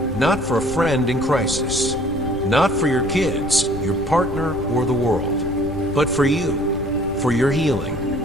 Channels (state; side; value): noise; left; rumble, 11 dB below the sound